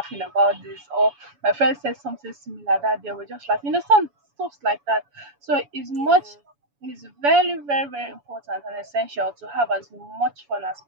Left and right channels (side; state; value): left; late; 7.1 ms